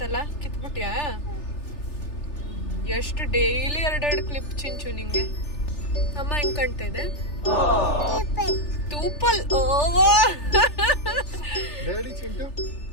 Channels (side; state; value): right; late; 3.4 ms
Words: ಕಿತ್ಬಿಟ್ಯಾ? ಎಷ್ಟು ಡೈಲಿ 2 ಕ್ಲಿಪ್ ಚಿಂಚು ನಿಂಗೆ. ಅಮ್ಮ ಹೆಂಗ್ ಕಾಣ್ತಾ ಇದೆ? ತೂಪಲ್.